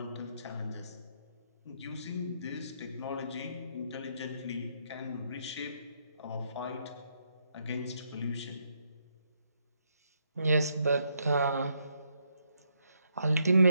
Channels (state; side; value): inverted; both; correlation -0.76